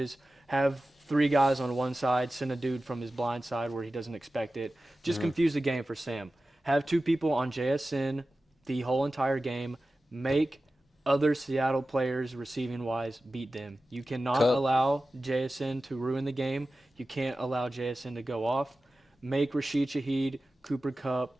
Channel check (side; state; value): both; normal; correlation 0.95